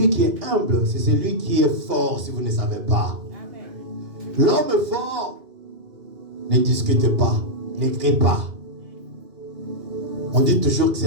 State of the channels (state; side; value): late; left; 2.8 ms